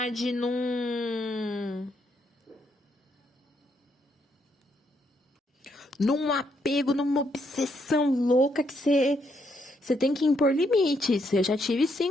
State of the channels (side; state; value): both; normal; correlation 0.75